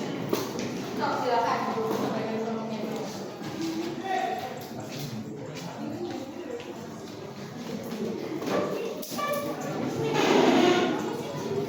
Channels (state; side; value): identical; both; correlation 1.00